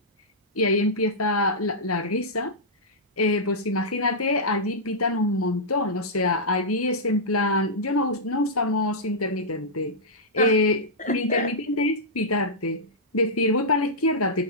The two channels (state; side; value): normal; both; correlation -0.12